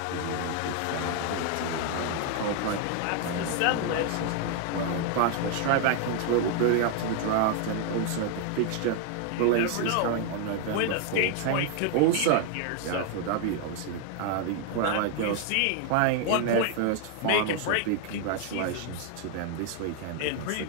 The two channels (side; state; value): both; different; correlation 0.00